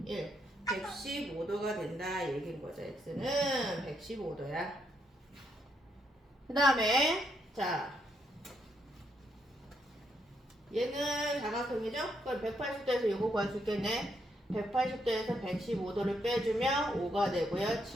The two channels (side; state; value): both; normal; correlation 0.77